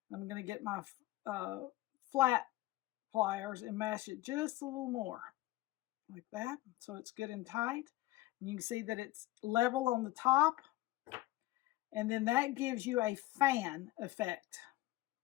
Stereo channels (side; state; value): right; quieter; 17.6 dB